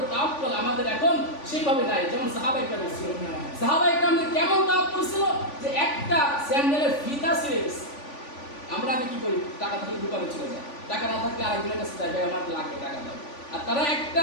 তাওয়াক্কুল আমাদের এখন সেইভাবে নাই যেমন সাহাবায়ে কেরাম ছিল। সাহাবায়ে কেরামদের কেমন তাওয়াক্কুল ছিল যে একটা স্যান্ডেলের ফিতা ছিঁড়ে গেছে, আমরা আগে কি করি? টাকা থাকলে দোকানে চলে যায়, টাকা না থাকলে আরেকজনের কাছে যাই, ভাই আমার লাগবে টাকা দাও। আর তারা একটা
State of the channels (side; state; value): right; late; 3.5 ms